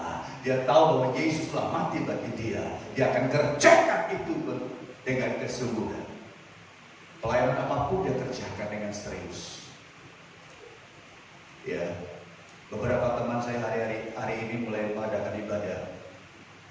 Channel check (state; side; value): identical; both; correlation 1.00